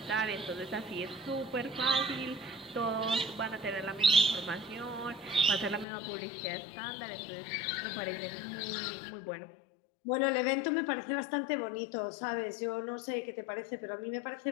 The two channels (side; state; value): right; drops out; at 5.9 s